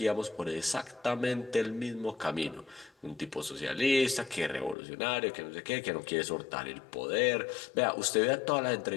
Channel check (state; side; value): drops out; right; at 4.8 s